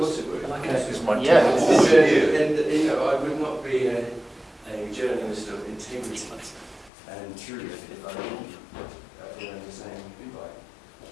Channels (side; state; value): right; drops out; at 6.9 s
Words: it would. It's my Yeah. And you know, I would not be a journalist of integrity and truth if I didn't learn the same invite.